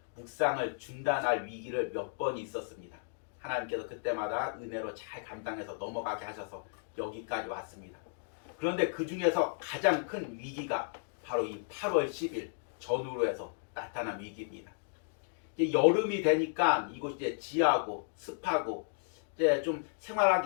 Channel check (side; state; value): right; silent; digital silence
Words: 묵상을 중단할 위기를 몇 번 있었습니다. 하나님께서 그때마다 은혜로 잘 감당해서 넘어가게 하셔서 여기까지 왔습니다. 그런데 그 중에서 가장 큰 위기가 바로 이 8월 10일 전후로 해서 나타난 위기입니다. 이제 여름이 되니까 이곳이 이제 지하고 습하고 이제 좀